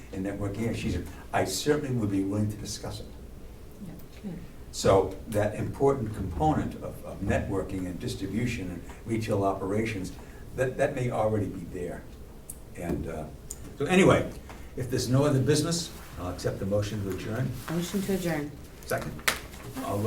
and network here? She said, I certainly would be willing to discuss it. Good. So that important component of networking and distribution and retail operations, that may already be there. And so anyway, if there's no other business, I'll accept the motion to adjourn. Motion to adjourn. Second. All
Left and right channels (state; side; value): identical; both; correlation 1.00